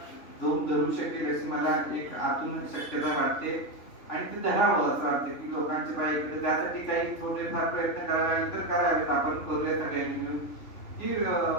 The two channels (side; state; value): right; late; 3.1 ms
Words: जोम धरू शकेल अशी मला एक आतून शक्यता वाटते आणि ते धरावं असं वाटतं की लोकांच्या बाईकडे त्यासाठी काही थोडेफार प्रयत्न करावे तर करावेत. आपण करूया सगळ्यांनी मिळून की